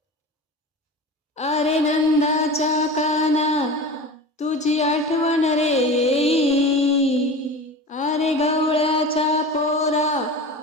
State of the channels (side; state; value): both; normal; correlation 0.32